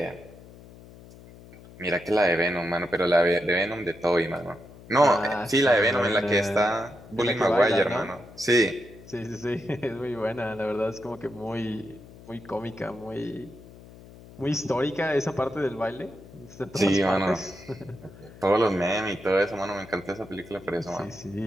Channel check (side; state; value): left; noise; hum, 19 dB below the sound